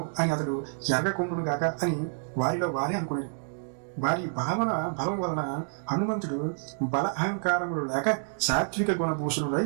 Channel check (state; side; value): silent; left; digital silence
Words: అని అతడు ఎర్రకొండును గాక అని వారిలో వారే అనుకునేది. వారి భావన బలం వలన హనుమంతుడు బల అహంకారములు లేక సాత్విక గుణభూషణుడై